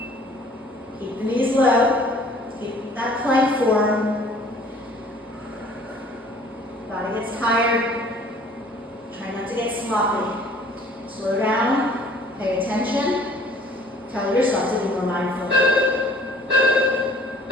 Keep the knees low. Keep that plank form. Body gets tired. Try not to get sloppy. Slow down. Pay attention. Tell yourself to be more mindful.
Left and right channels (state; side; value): normal; both; correlation 0.54